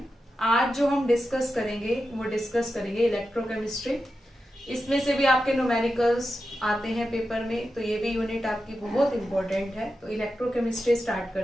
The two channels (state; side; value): normal; both; correlation 0.90